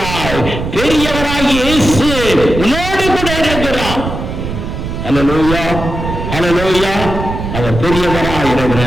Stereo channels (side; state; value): right; noise; rumble, 6 dB below the sound